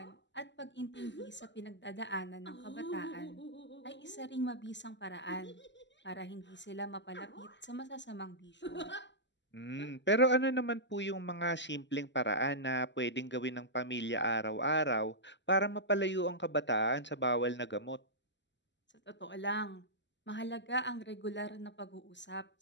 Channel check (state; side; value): late; right; 0.52 ms